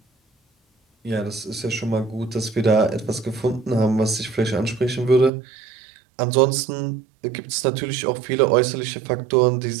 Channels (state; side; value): drops out; left; at 5.3 s